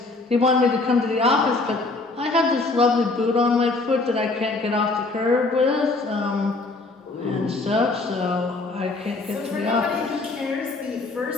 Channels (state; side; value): quieter; right; 3.4 dB